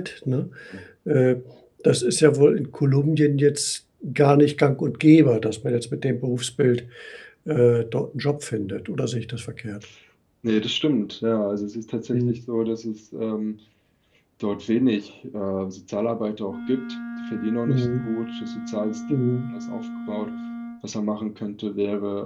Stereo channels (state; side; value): identical; both; correlation 1.00